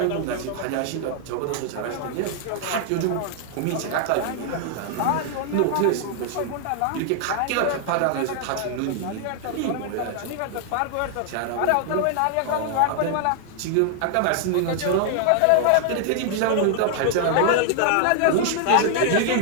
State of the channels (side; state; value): both; different; correlation 0.00